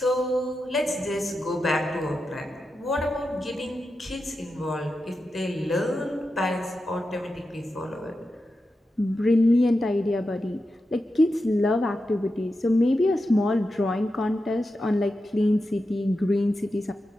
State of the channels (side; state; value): both; normal; correlation 0.90